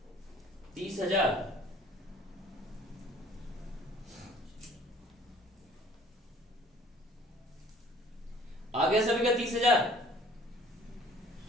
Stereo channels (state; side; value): normal; both; correlation 0.53